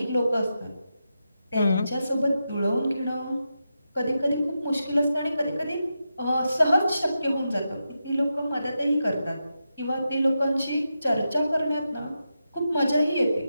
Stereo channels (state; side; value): inverted; both; correlation -0.88